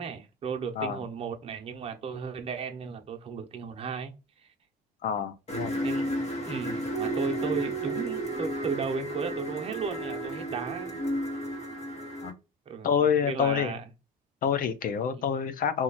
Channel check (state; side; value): normal; both; correlation 0.26